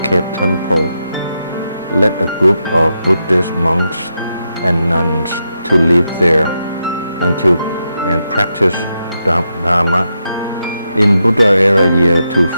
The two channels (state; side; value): inverted; both; correlation -0.85